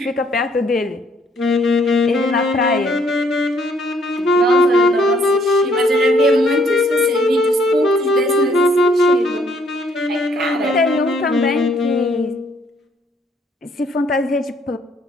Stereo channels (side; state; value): both; normal; correlation 0.66